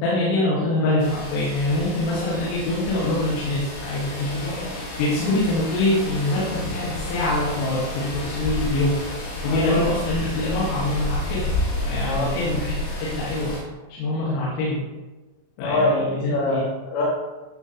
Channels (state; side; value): late; right; 37 ms